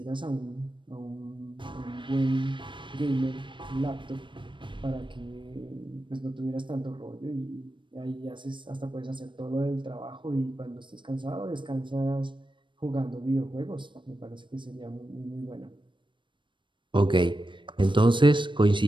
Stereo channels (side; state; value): left; late; 0.23 ms